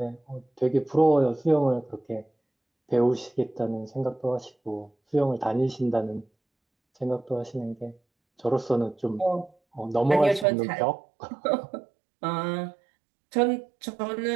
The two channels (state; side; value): drops out; left; at 10.5 s